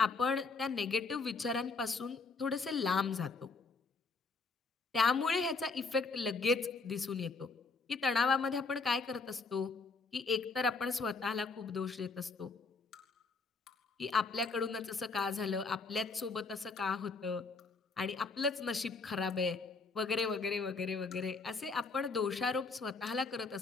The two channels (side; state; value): right; quieter; 4.2 dB